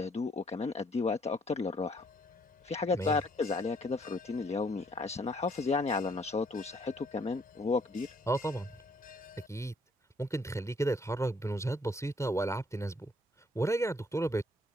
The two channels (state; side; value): normal; both; correlation 0.65